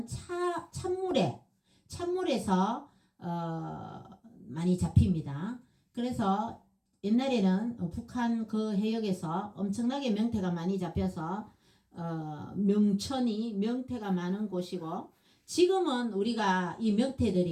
찬물에서 많이 잡힙니다. 그래서 옛날에는 북한 그 해역에서 엄청나게 명태가 많이 잡혀서 명태가 많은 곳이고, 지금은 우리가 이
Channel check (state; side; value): identical; both; correlation 1.00